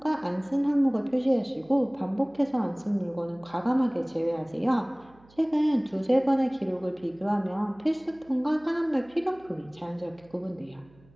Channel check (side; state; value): right; noise; hum, 28 dB below the sound